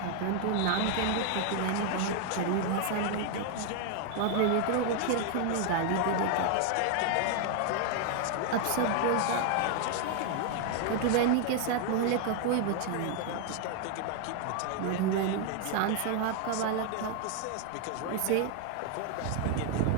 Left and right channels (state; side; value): different; both; correlation 0.00